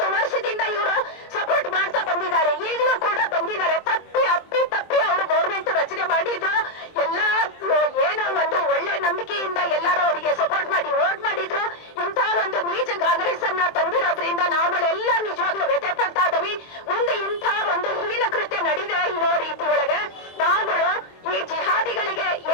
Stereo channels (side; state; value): right; late; 23 ms